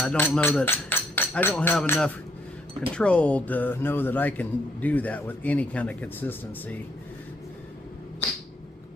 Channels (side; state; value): both; normal; correlation 0.70